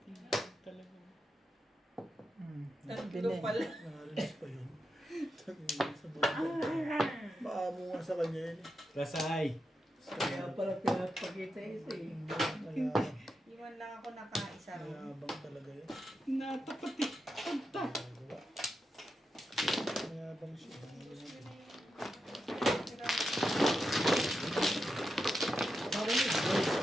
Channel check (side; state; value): both; normal; correlation 0.87